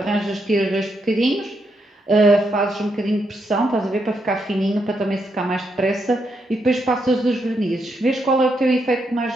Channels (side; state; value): both; normal; correlation 0.80